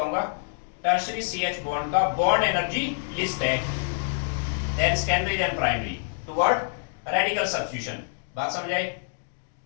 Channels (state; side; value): silent; right; digital silence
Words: टर्शियरी CH बॉन्ड का बॉन्ड एनर्जी लिस्ट है than secondary then primary toward radical substitution. बात समझ आई?